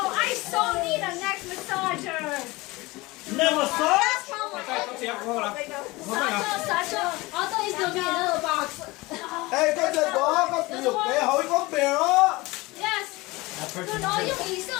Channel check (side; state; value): right; quieter; 22.1 dB